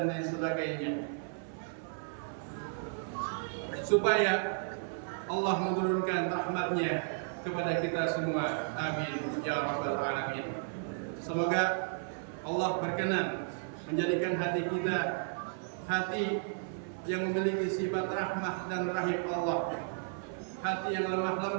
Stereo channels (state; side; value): silent; left; 55 dB below the other